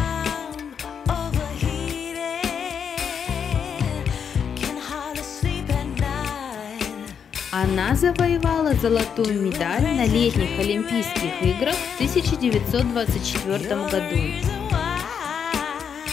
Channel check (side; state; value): right; quieter; 7.3 dB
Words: Она завоевала золотую медаль на летних Олимпийских играх в 1924 году.